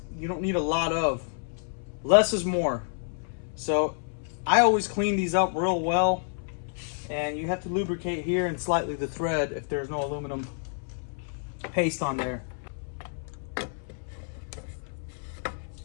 you don't need a lot of. Less is more. So I always clean these up real well, and you have to lubricate here and slightly the thread if there's no aluminum paste on there.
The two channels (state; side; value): silent; right; 59 dB below the other